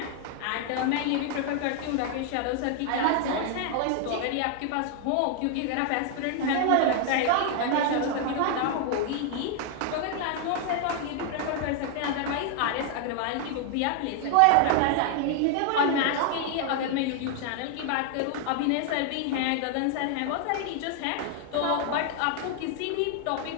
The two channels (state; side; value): different; both; correlation 0.00